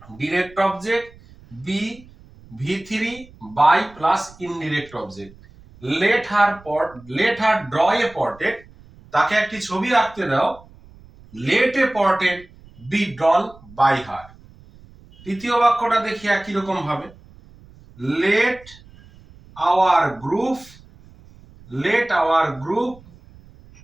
ডিরেক্ট অবজেক্ট বি ভি3 by plus indirect object. Let her draw a portrait, তাকে একটি ছবি আঁকতে দাও, let a portrait be drawn by her. তৃতীয় বাক্যটা দেখি একই রকম ভাবে, let our group, let our group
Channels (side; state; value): right; noise; rumble, 24 dB below the sound